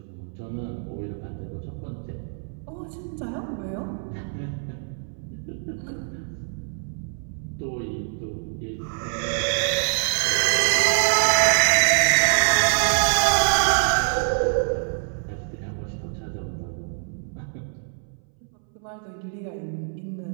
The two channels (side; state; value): left; silent; 62 dB below the other